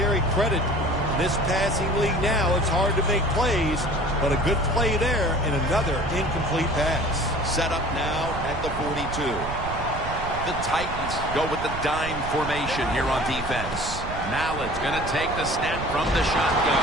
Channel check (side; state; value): right; noise; rumble, 8 dB below the sound